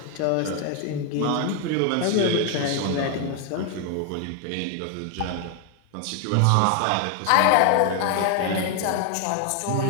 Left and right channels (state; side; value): different; both; correlation 0.01